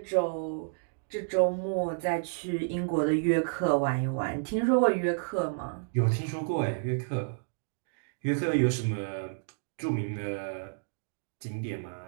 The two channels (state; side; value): silent; left; digital silence